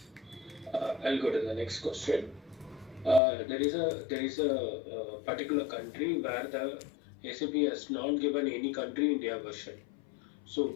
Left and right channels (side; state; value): right; drops out; at 3.2 s